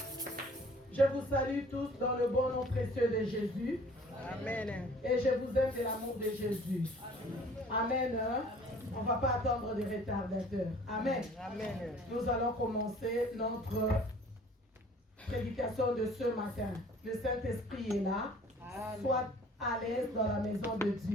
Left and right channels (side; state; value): both; normal; correlation 0.52